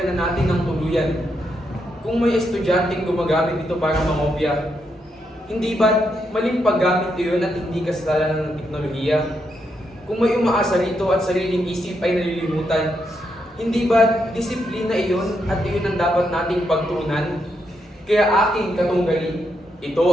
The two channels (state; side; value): normal; both; correlation 0.80